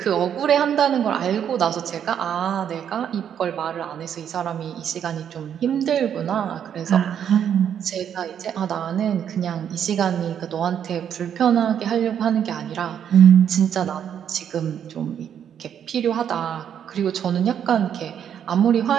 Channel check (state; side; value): quieter; left; 8.9 dB